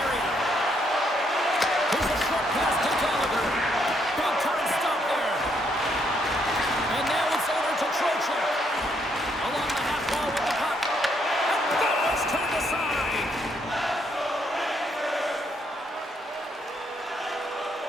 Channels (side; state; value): both; normal; correlation 0.73